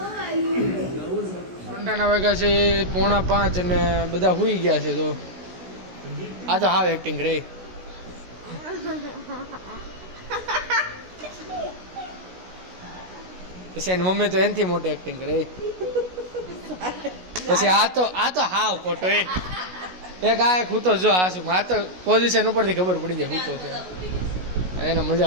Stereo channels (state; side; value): late; left; 16 ms